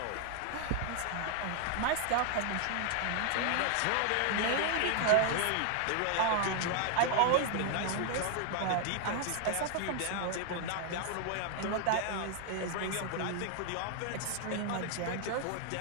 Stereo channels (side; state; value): both; different; correlation 0.00